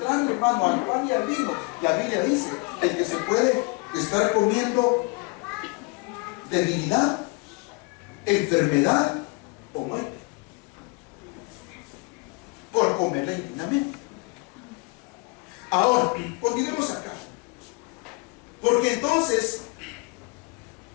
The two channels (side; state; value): right; quieter; 29.1 dB